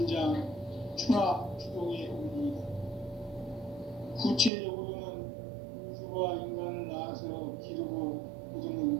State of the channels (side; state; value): left; drops out; at 4.5 s